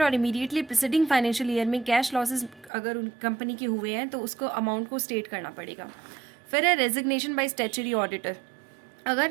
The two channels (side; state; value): left; drops out; at 2.7 s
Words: और इमीडिएटली प्रिसीडिंग फाइनेंशियल ईयर में कैश लॉसेस अगर उन कंपनी के हुए हैं तो उसको अमाउंट को स्टेट करना पड़ेगा। फिर है रेजिग्नेशन बाय स्टैच्यूटरी ऑडिटर।